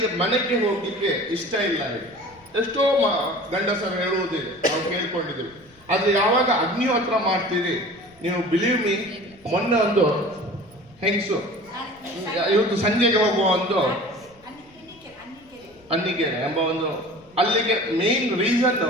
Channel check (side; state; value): left; noise; rumble, 29 dB below the sound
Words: ಮನೆಗೆ ಹೋಗ್ಲಿಕ್ಕೆ ಇಷ್ಟ ಇಲ್ಲ ಹೇಳಿ ಎಷ್ಟೋ ಗಂಡಸರು ಹೇಳುವುದಿಲ್ಲ, ನಾವು ಕೇಳ್ಕೊಂಡಿದ್ದೀವಿ. ಆದ್ರೆ ಯಾವಾಗ ಅಗ್ನಿಹೋತ್ರ ಮಾಡ್ತೀರಿ, ನೀವು ಬಿಲೀವ್ ಮೀ, ಮೊನ್ನೆ ಒಂದು ಹೆಂಗಸು ಇವತ್ತು ಸಂಜೆಗೆ ಹೋಗುವ ಒಂದು ಅನ್ನಿಗೆರೆ ಎಂಬ ಒಂದು ಅಲ್ಲಿಗೆ ಮೇನ್ ರೀಸನ್,